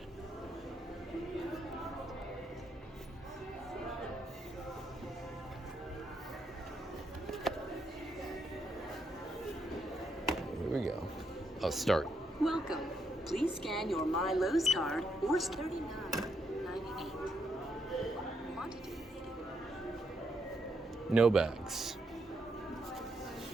Here we go. Oh, start. Welcome. Please scan your My Lowe's card or $39.98. Quantity needed. No bags.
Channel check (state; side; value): normal; both; correlation 0.78